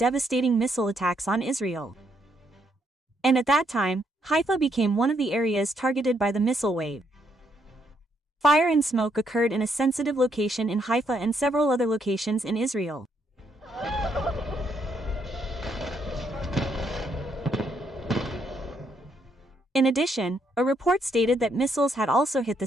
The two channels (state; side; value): normal; both; correlation 0.74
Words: missile attacks on Israel. And at that time, Haifa became one of the areas targeted by the missile wave. Fire and smoke occurred in a sensitive location in Haifa and several other locations in Israel. In addition, a report stated that missiles had also hit the